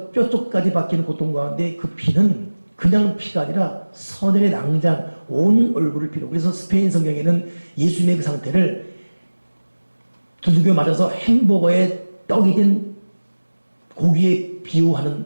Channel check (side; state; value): both; inverted; correlation -1.00